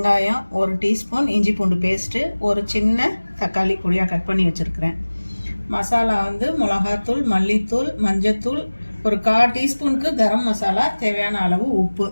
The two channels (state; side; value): inverted; both; correlation -1.00